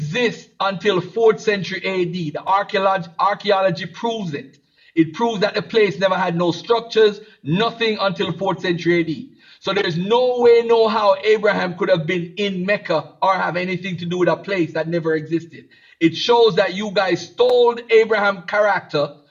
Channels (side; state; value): both; identical; correlation 1.00